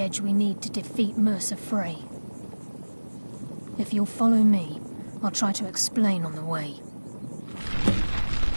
we need to defeat Mercer Frey. If you'll follow me, I'll try to explain on the way.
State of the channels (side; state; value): both; inverted; correlation -1.00